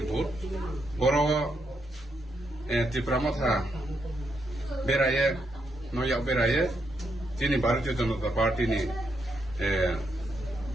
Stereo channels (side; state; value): both; normal; correlation 0.80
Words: বুথ বড় ত্রিপুরা মথা বেরায়ে নয়া বেরায়ে তিনি ভারতীয় জনতা পার্টি নি